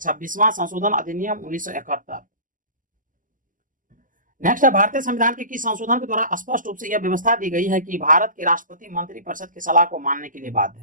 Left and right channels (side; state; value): left; late; 0.38 ms